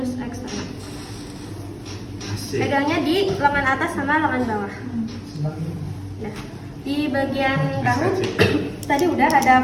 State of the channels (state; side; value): identical; both; correlation 1.00